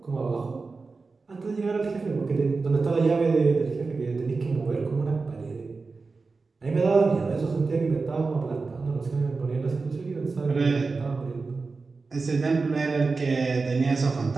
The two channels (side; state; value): left; quieter; 4.1 dB